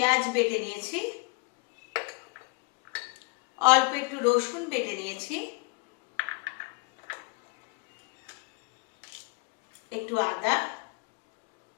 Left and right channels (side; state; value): right; quieter; 30.1 dB